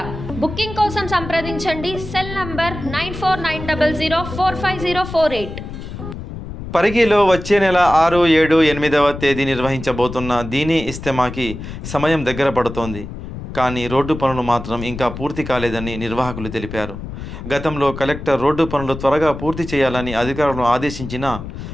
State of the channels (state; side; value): noise; left; rumble, 10 dB below the sound